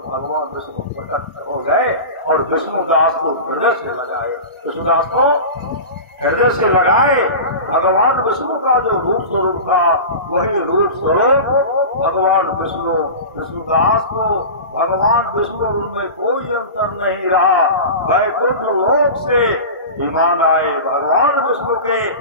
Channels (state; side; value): inverted; both; correlation -0.30